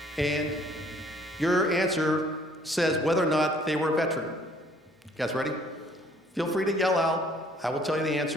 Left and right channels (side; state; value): both; normal; correlation 0.60